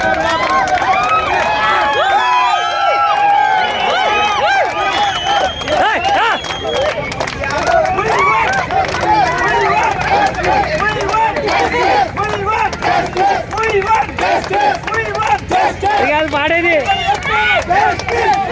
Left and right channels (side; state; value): both; identical; correlation 1.00